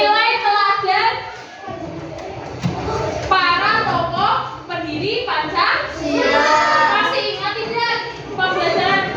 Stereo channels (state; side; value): identical; both; correlation 1.00